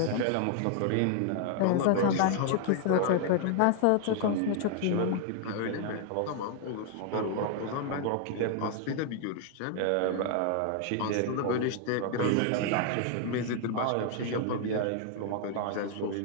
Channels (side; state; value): both; different; correlation 0.00